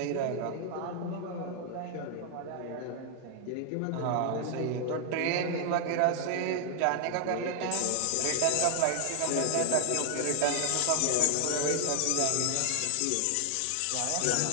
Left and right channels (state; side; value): different; both; correlation 0.00